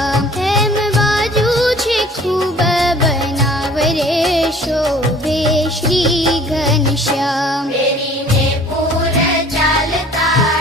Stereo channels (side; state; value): both; normal; correlation 0.51